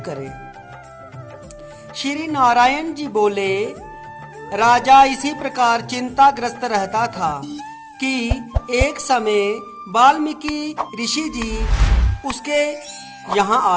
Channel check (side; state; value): both; identical; correlation 1.00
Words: करें। श्री नारायण जी बोले, राजा इसी प्रकार चिंताग्रस्त रहता था कि एक समय वाल्मीकि ऋषि जी उसके यहाँ